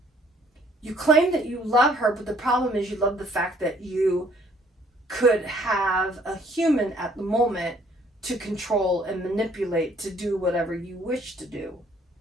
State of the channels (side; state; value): both; normal; correlation 0.61